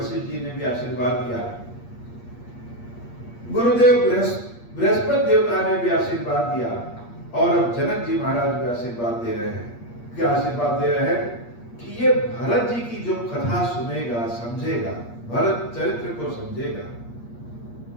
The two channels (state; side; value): late; right; 8.5 ms